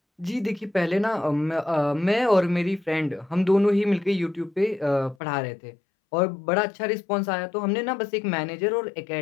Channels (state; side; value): drops out; right; at 5.2 s